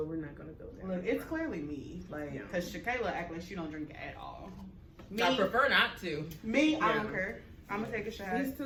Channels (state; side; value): identical; both; correlation 1.00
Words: we're not going to go there. Look, it's clearly me. Like, because Shakayla act like she don't drink at all. Me, I prefer not to. I don't care. I'm going to take a shot. These